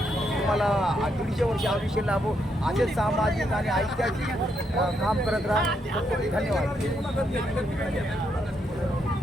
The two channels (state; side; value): normal; both; correlation 0.78